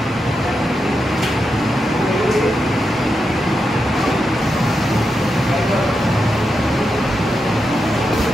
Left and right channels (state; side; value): normal; both; correlation 0.86